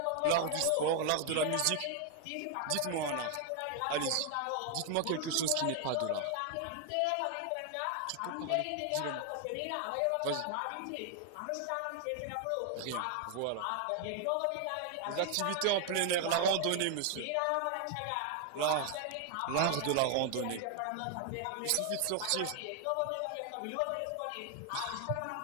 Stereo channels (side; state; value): both; different; correlation 0.00